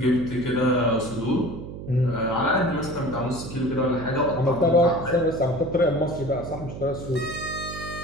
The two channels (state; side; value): noise; right; hum, 10 dB below the sound